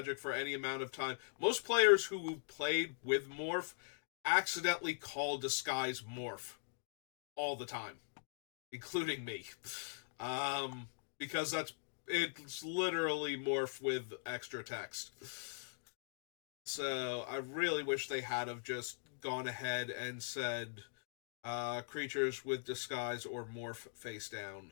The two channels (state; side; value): silent; right; digital silence